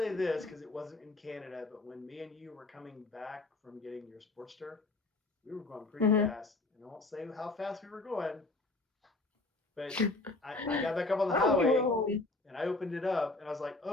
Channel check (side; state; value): right; quieter; 3.1 dB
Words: this because it wasn't in Canada, but when me and you were coming back from getting your Sportster, we were going pretty Hmm. fast. And I won't say how fast we were going, but I got back up on the Oh, you were highway home. and I opened it up and I was like,